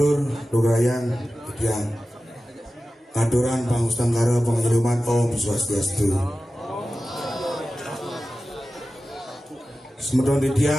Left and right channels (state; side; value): normal; both; correlation 0.94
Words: durayang di tiang ngaturan pangustangkara pangajeluman Om Swastiastu. Semedon di